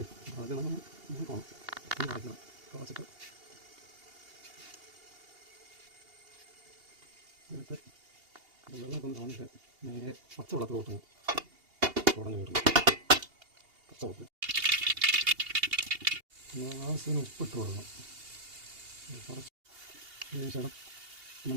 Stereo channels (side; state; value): left; late; 2.8 ms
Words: അത് നമ്മൾ നോക്കണം. അടയ്ക്കണം. കുറച്ചിട്ട് എടുത്ത് വെള്ളമൊക്കെ ഒന്ന് കളഞ്ഞിട്ട് നേരെ പച്ചവെള്ളത്തിൽ കൂട്ടണം. ഉടഞ്ഞു വീട്ടണം. പച്ചവെള്ളത്തിൽ ആവശ്യത്തിന് ഉപ്പിട്ട് കൊടുക്കണം. കുറച്ച് ശേഷം